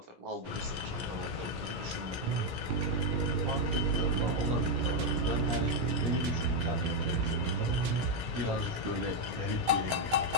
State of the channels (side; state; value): left; late; 17 ms